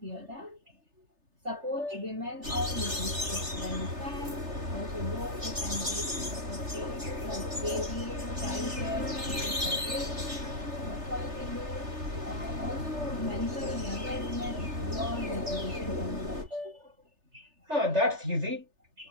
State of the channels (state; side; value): late; left; 3.3 ms